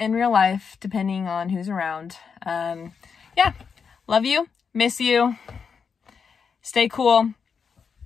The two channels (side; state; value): right; quieter; 6.1 dB